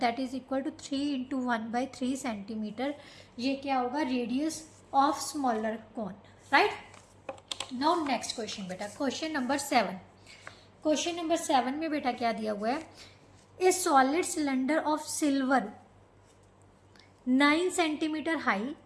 is equal to 3 into 1/3 centimetre. ये क्या होगा, radius of smaller cone, right. Now next question बेटा, क्वेश्चन नंबर 7। क्वेश्चन नंबर 7 में बेटा क्या दिया हुआ है, a solid cylinder of silver 9 centimetre high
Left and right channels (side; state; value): both; identical; correlation 1.00